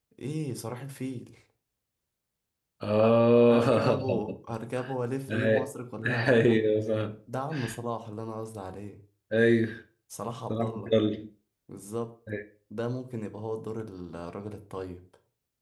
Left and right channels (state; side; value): identical; both; correlation 1.00